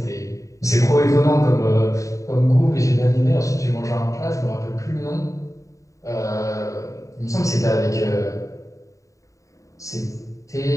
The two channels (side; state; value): right; late; 0.16 ms